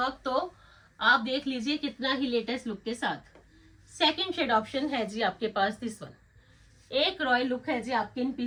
तो आप देख लीजिए कितना ही लेटेस्ट लुक के साथ। सेकंड शेड ऑप्शन है जी आपके पास, दिस वन। एक रॉयल लुक है जी आपके इन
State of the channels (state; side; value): identical; both; correlation 1.00